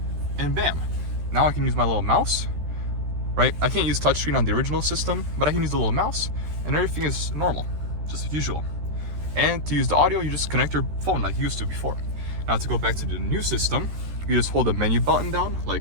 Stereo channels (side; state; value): left; late; 13 ms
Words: and bam. Now I can use my little mouse, right? I can't use touchscreen on the original system, but I can use the little mouse, and everything is normal, just as usual. And to use the audio, you just connect your phone like you used to before. Now to go back to the new system, you just hold the menu button down